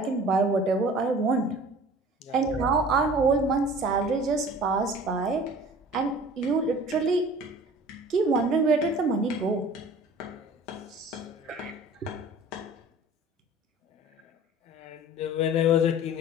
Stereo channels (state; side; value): normal; both; correlation 0.45